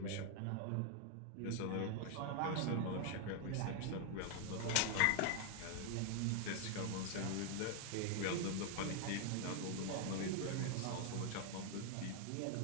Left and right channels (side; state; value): both; different; correlation 0.00